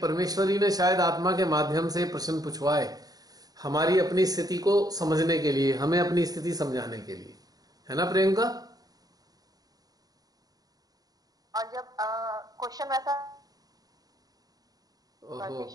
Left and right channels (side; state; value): left; late; 0.18 ms